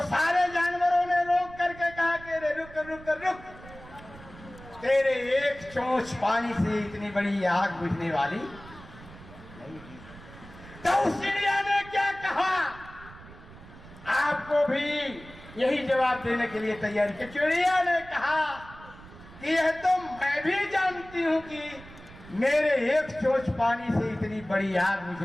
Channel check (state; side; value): noise; right; rumble, 19 dB below the sound